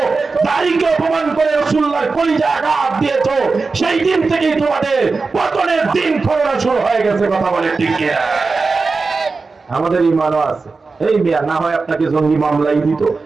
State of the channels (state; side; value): quieter; left; 4.2 dB